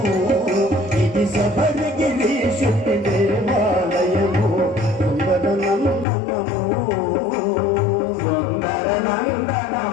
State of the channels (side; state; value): right; drops out; at 6.1 s